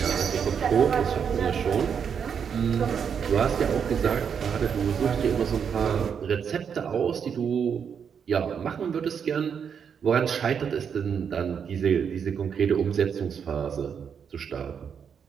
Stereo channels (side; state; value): left; quieter; 7.2 dB